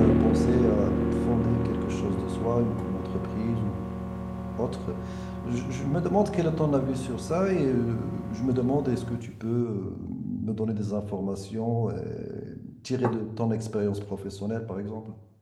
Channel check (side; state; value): both; identical; correlation 1.00